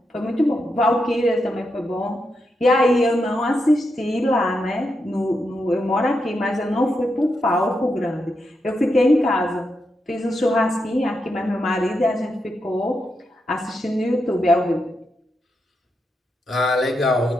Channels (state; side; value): normal; both; correlation 0.85